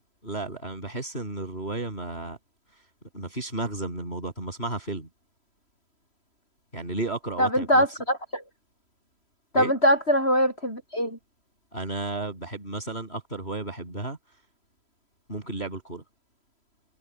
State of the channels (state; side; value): late; right; 3.0 ms